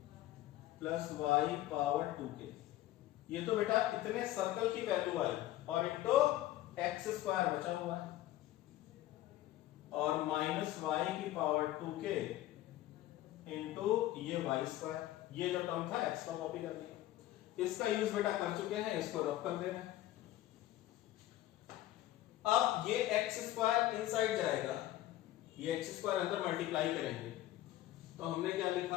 plus y power 2k। ये तो बेटा इतने सर्कल की वैल्यू आई और इंटू एक्स स्क्वायर बचा हुआ है, और माइनस वाई की पावर 2k इंटू ये वाई स्क्वायर। ये जो टर्म था एक्स का कॉपी कर दिया, इसका यूज बेटा कर चुके हैं, इसको रब कर दे रहे हैं। अब ये एक्स स्क्वायर इनसाइड जाएगा, ये एक्स स्क्वायर अंदर मल्टीप्लाई करेंगे, तो हमने क्या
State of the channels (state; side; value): quieter; right; 14.8 dB